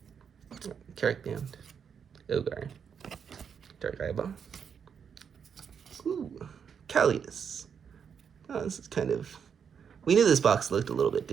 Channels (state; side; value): quieter; left; 7.1 dB